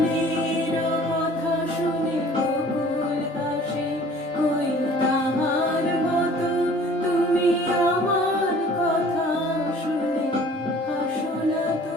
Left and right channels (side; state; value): both; normal; correlation 0.50